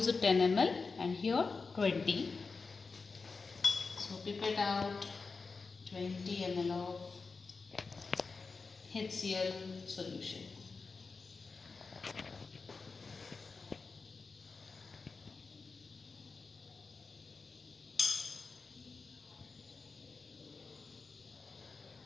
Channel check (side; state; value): right; quieter; 4.4 dB